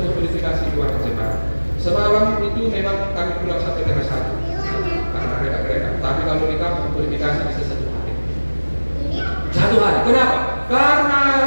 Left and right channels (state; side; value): inverted; both; correlation -1.00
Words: verifikasi keuangan jemaat. Semalam itu memang kami pulang sampai tengah 1 karena mereka. Tapi kalau di kampung verifikasi bisa 1 hari. 1 hari. Kenapa? Karena